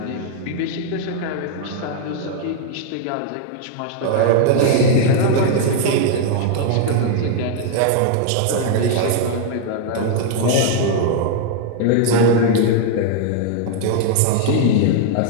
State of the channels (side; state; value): both; different; correlation 0.00